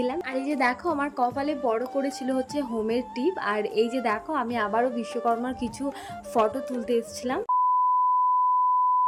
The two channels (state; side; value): identical; both; correlation 1.00